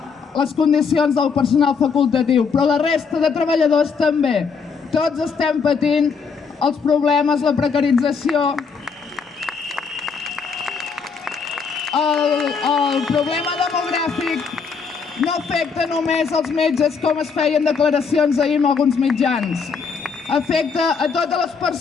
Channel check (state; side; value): quieter; right; 5.6 dB